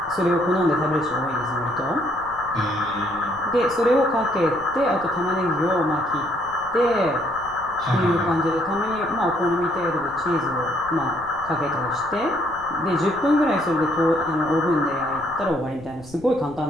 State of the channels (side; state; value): left; noise; rumble, 21 dB below the sound